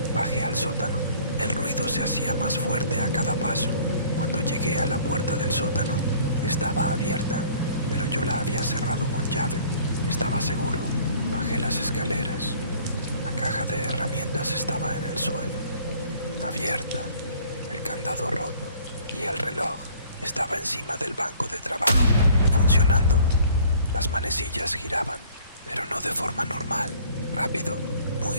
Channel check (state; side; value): inverted; both; correlation -0.53